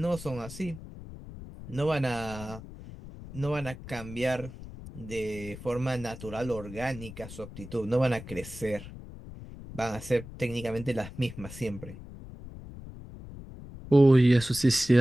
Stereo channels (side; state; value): left; noise; rumble, 14 dB below the sound